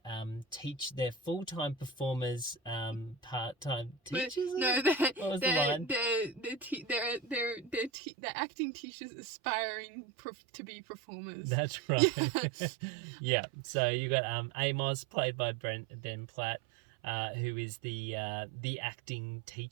full-time performers, part-time teachers. No, what was the line? They're acting teachers aspiring to be performers. That's right. Yeah. So you got Amos, played by Ben Platt, who is the acting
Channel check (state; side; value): drops out; left; at 7.9 s